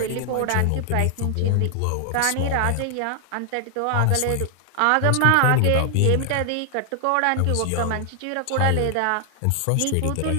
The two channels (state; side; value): different; both; correlation 0.00